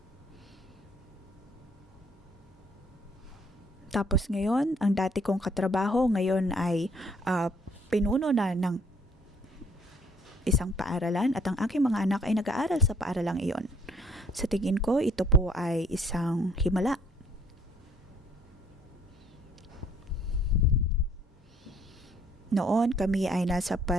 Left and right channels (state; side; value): normal; both; correlation 0.63